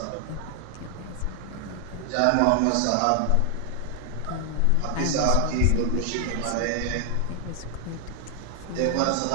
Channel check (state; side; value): different; both; correlation 0.00